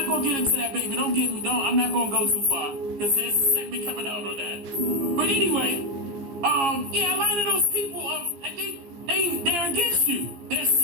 going to get into that, baby. Don't get me down. I'm not going to go too far. Because there's a segment coming out on that. But anyway, a lot of those people, they're against you. They're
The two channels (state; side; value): late; left; 15 ms